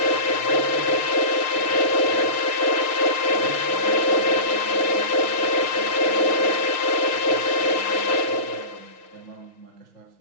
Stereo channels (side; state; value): right; late; 6.5 ms